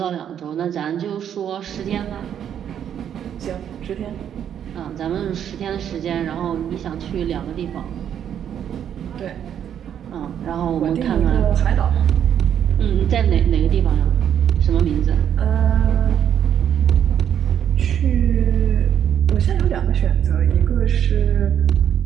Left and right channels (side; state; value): left; quieter; 9.3 dB